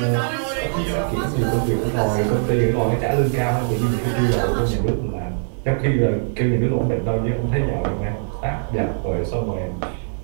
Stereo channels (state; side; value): silent; left; digital silence